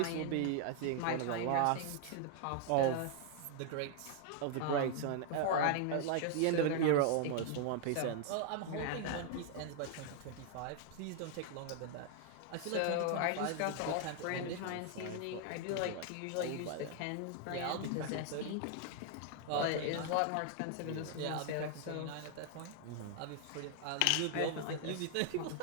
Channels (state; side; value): different; both; correlation 0.00